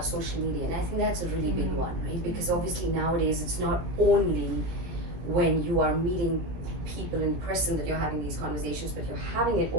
social media, and I think that's a really big one, right? Because obviously nowadays it's not only when you are meeting people in person that you're having these conversations, but you're having it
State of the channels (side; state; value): left; late; 17 ms